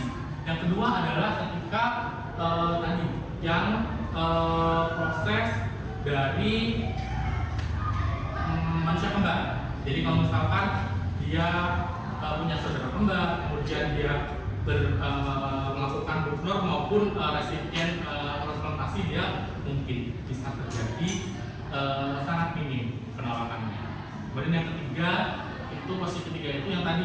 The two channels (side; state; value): both; identical; correlation 1.00